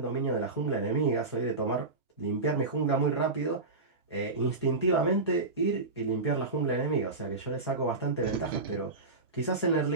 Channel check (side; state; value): left; quieter; 3.5 dB